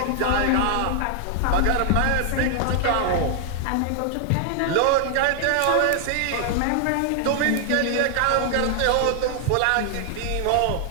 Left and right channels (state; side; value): different; both; correlation 0.00